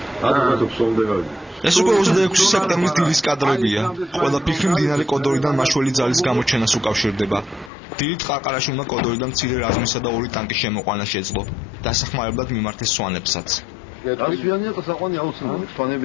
ადრე ფსონდე გავიდეთ. ეს უკვე 26 სექტემბრის დილის კადრებია. ყველა ფიქრი მდინარე კოდორიდან მაშველი ძალის გამოჩენას უკავშირდება. დილით ყარყარაში უნდა კოდორიდან მცირე რაზმისა და 2 ტანკის შემოყვანა შეძლო. დასახმარებლად მიმართეს სვანებსაც.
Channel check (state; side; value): drops out; right; at 7.7 s